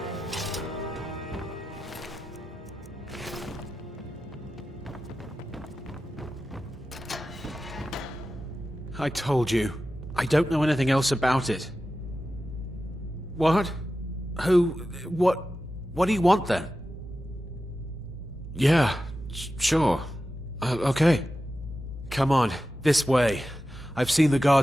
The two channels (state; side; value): normal; both; correlation 0.92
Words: I told you. I don't know anything else about it. What? Who? What do you want then? Yeah, sure. Okay. Come on, this way. I've seen the